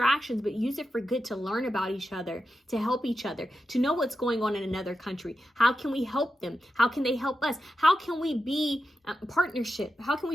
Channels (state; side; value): normal; both; correlation 0.90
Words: but use it for good, to learn about each other, to help each other, to know what's going on in another country. How can we help them? How can they help us? How can we be partnership? How can